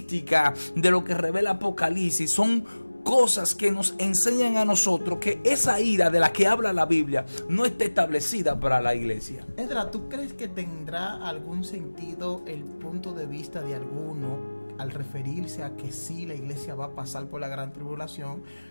de lo que revela Apocalipsis son cosas que nos enseñan a nosotros que esa ira de la que habla la Biblia no está establecida para la iglesia. Edra, ¿tú crees que tendrá algún sentido el punto de vista de alguno al referirse a que sí, la iglesia va a pasar por la gran tribulación,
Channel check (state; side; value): inverted; both; correlation -1.00